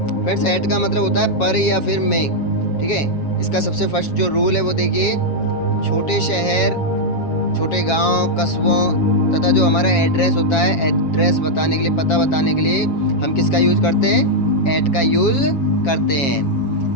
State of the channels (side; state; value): right; late; 7.3 ms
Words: फ्रेंड्स, एट का मतलब होता है पर या फिर में, ठीक है। इसका सबसे फर्स्ट जो रूल है वो देखिए, छोटे शहर, छोटे गांव, कस्बों तथा जो हमारा एड्रेस होता है, एड्रेस बताने के लिए, पता बताने के लिए हम किसका यूज़ करते हैं? एट का यूज़ करते